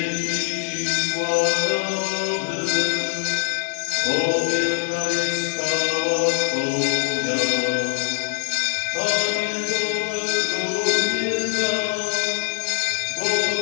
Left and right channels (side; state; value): right; silent; digital silence